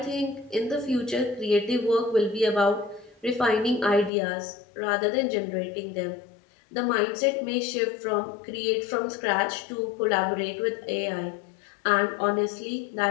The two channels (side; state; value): right; drops out; at 4.1 s